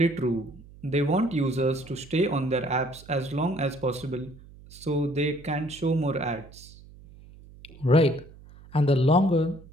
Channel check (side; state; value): right; noise; hum, 21 dB below the sound